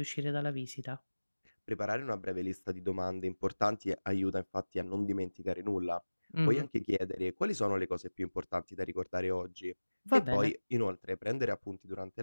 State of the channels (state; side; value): inverted; both; correlation -1.00